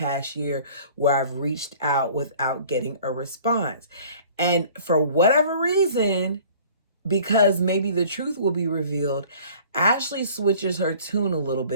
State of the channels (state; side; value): inverted; both; correlation -0.49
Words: year where I've reached out without getting a response. And for whatever reason, because maybe the truth will be revealed, Ashley switches her tune a little